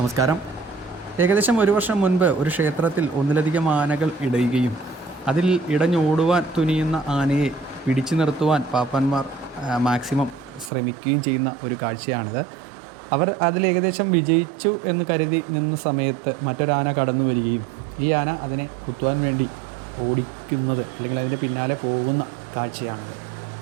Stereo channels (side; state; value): left; drops out; at 10.7 s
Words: ഏകദേശം ഒരു വർഷം മുൻപ് ഒരു ക്ഷേത്രത്തിൽ ഒന്നിലധികം ആനകൾ ഇടയുകയും അതിൽ ഇടഞ്ഞോടുവാൻ തുനിയുന്ന ആനയെ പിടിച്ചു നിർത്തുവാൻ പാപ്പാന്മാർ മാക്സിമം ശ്രമിക്കുകയും ചെയ്യുന്ന ഒരു കാഴ്ചയാണിത്. അവർ അതിൽ ഏകദേശം വിജയിച്ചു എന്ന് കരുതി നിന്ന സമയത്ത് മറ്റൊരാന കടന്നു വരികയും ഈ ആന അതിനെ കുത്തുവാൻ വേണ്ടി ഓടിക്കുന്നത് അല്ലെങ്കിൽ അതിൻ്റെ പിന്നാലെ പോകുന്ന കാഴ്ചയാണിത്.